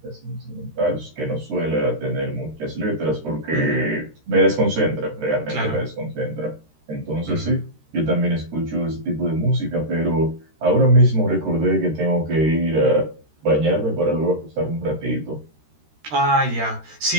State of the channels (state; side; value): late; left; 13 ms